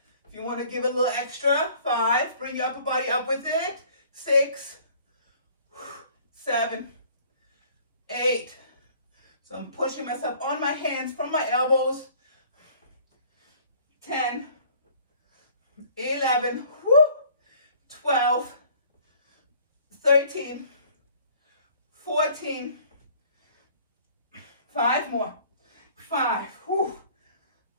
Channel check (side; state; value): both; inverted; correlation -0.54